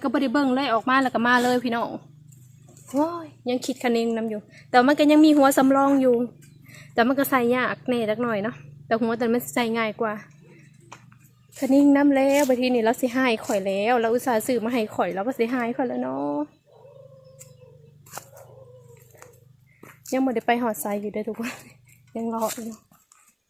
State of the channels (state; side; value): identical; both; correlation 1.00